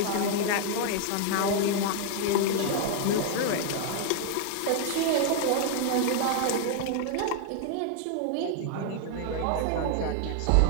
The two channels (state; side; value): different; both; correlation 0.00